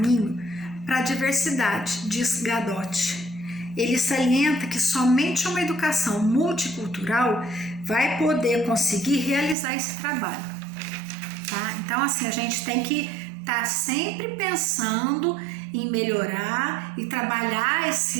para a diversidade, diz Gadotti. Ele salienta que somente uma educação multicultural vai poder conseguir realizar esse trabalho, tá? Então, assim, a gente tem que estar sempre pensando em melhorar e trabalhar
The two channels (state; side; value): drops out; left; at 9.6 s